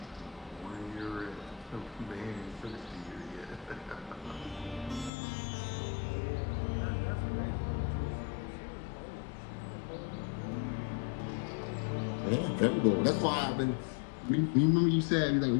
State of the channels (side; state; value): right; drops out; at 5.1 s